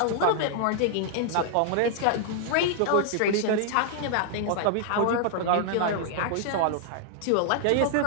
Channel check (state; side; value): different; both; correlation -0.01